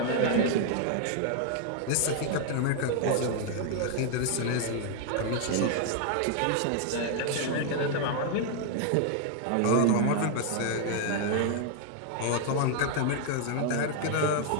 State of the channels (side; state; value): both; different; correlation 0.00